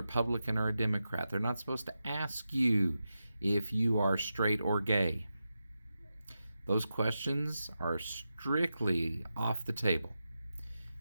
or a Democrat. They're not supposed to ask you if you are straight or gay. Those questions are strictly off the table.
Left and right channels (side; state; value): both; inverted; correlation -0.90